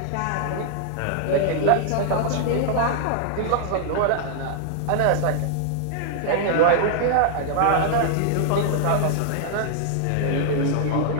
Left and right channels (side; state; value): both; different; correlation -0.01